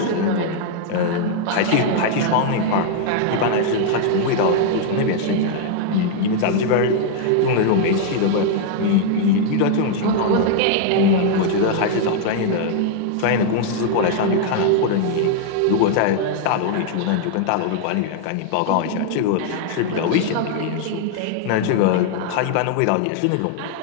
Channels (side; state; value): both; different; correlation 0.00